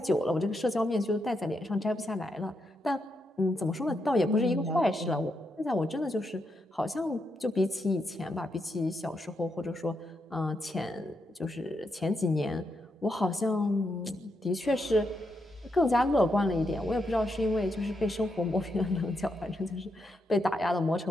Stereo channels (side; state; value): both; normal; correlation 0.82